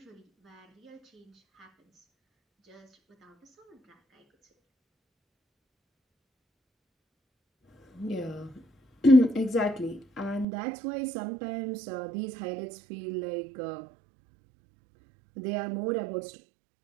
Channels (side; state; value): left; drops out; at 10.5 s